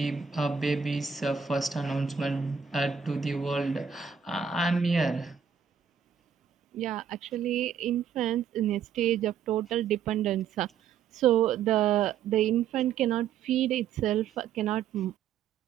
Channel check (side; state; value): left; quieter; 7.5 dB